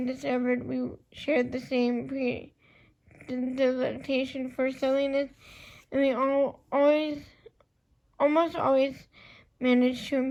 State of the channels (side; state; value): both; identical; correlation 1.00